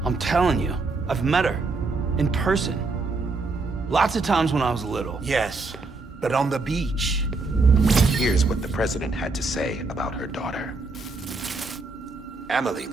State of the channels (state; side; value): quieter; left; 3.6 dB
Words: I'm telling you, I've met her. In person. Lots of times when I was little. Yes, but on the beach. Here's what the president had to say about her daughter. Amelie